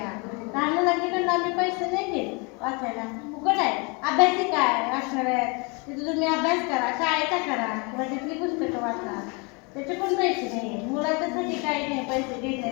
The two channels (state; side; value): quieter; right; 30.8 dB